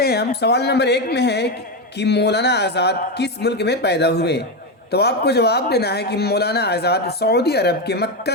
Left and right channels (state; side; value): normal; both; correlation 0.11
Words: हैं हम। सवाल नंबर 1 में है कि मौलाना आज़ाद किस मुल्क में पैदा हुए, तो आपको जवाब देना है कि मौलाना आज़ाद सऊदी अरब के